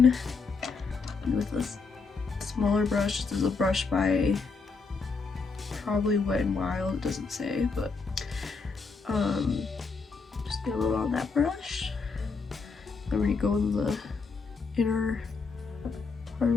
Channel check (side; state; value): right; quieter; 4.6 dB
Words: And with this smaller brush, this is a brush by probably Wet n Wild, it doesn't say, but just get a little on that brush. I'm gonna go in the inner part of